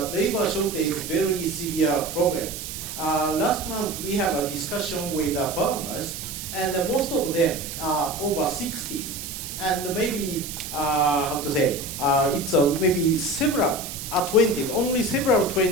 labor shortage, very severe problem. Last month we had a discussion with farmers, and most of them are over 60s. And maybe, how to say, it's maybe several 20s, only several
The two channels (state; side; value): noise; right; hiss, 8 dB below the sound